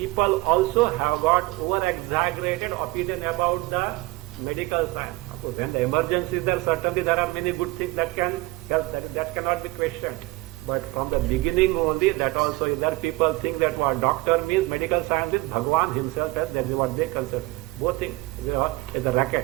also have got over-exaggerated opinion about the medical science. When the emergency is there, certainly there are many good things that can help, that cannot be questioned. But from the beginning only, that also is there. People think that what doctor means, medical science is Bhagwan himself, as that is what they consider. Both things is a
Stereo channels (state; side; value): quieter; left; 21.1 dB